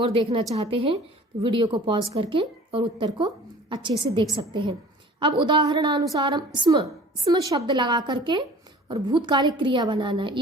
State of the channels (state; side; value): normal; both; correlation 0.45